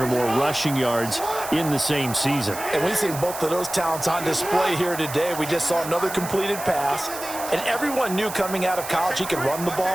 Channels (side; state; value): right; noise; hiss, 10 dB below the sound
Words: more rushing yards in the same season. And we've seen both of those talents on display here today. We just saw another completed pass. And everyone knew coming out of college he could run the